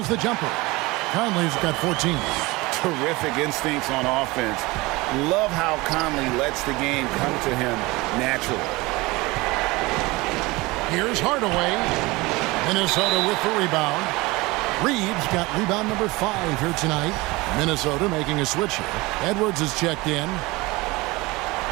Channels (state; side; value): quieter; left; 22.4 dB